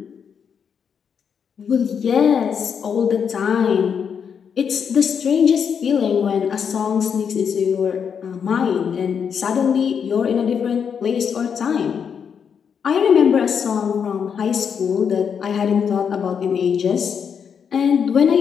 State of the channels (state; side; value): quieter; right; 7.1 dB